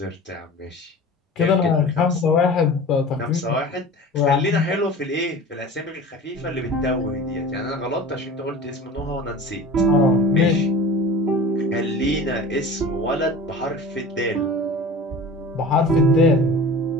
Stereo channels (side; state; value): both; normal; correlation 0.38